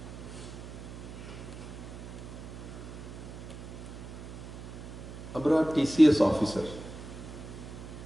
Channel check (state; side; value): noise; right; hum, 11 dB below the sound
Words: আমরা TCS officer,